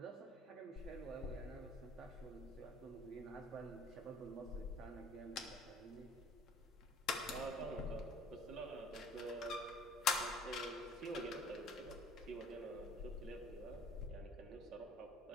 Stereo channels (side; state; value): both; normal; correlation 0.52